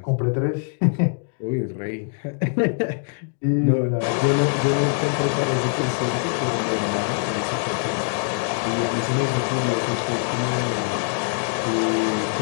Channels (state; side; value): silent; right; 61 dB below the other